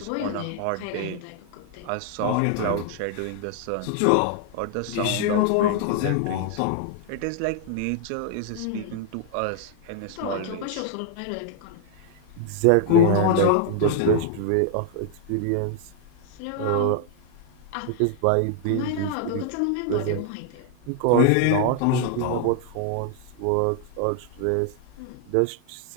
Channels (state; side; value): different; both; correlation 0.00